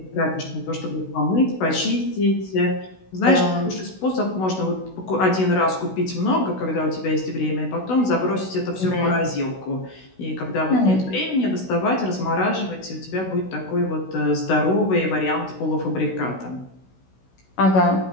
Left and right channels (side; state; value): right; late; 16 ms